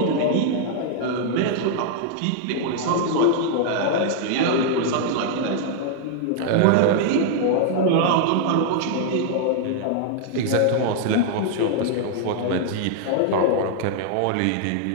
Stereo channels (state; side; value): different; both; correlation 0.00